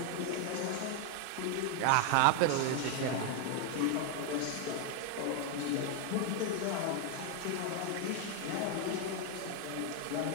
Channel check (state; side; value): different; both; correlation 0.01